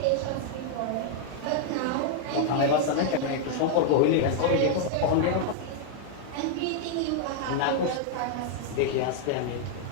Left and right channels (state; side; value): different; both; correlation 0.00